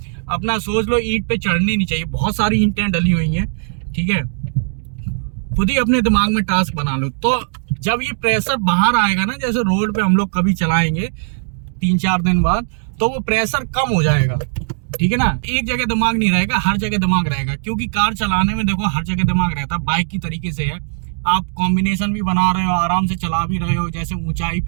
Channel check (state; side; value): silent; left; digital silence